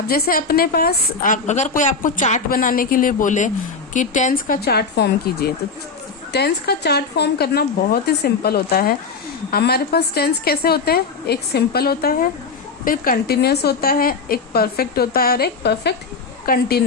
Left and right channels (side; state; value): right; quieter; 4.7 dB